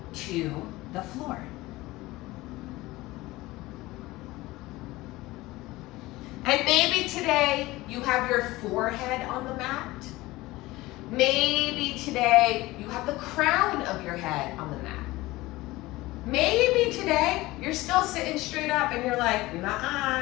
to the floor. And maybe today you have your forehead on the mat. Maybe today you have the crown of your head on the mat. Maybe today you're still sitting straight up and you're like,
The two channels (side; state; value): right; quieter; 19.3 dB